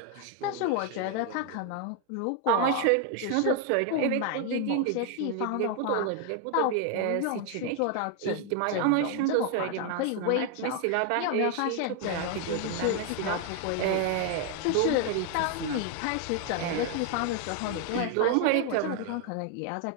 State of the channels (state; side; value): different; both; correlation 0.01